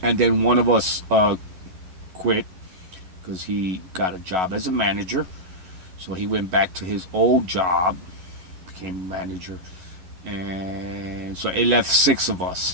and then one of us quit because he got a job as a manager. So he went back to his old job, became a manager, and so it left 6 of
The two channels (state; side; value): late; left; 11 ms